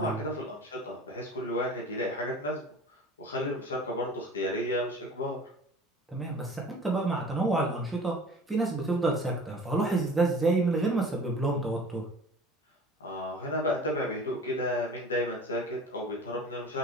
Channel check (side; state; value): both; normal; correlation 0.43